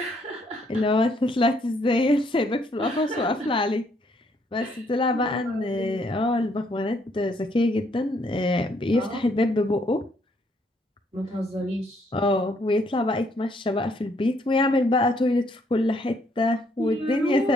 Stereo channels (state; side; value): normal; both; correlation 0.69